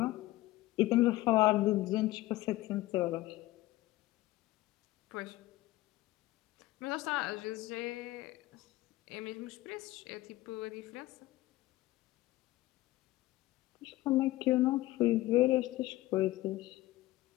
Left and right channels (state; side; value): quieter; right; 17.5 dB